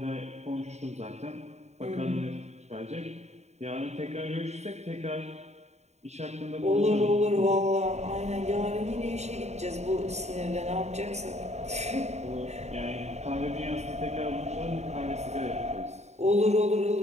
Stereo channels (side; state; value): left; late; 0.32 ms